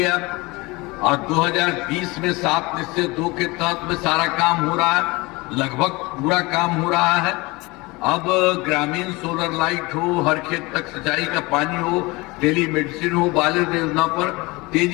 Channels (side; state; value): right; quieter; 23.8 dB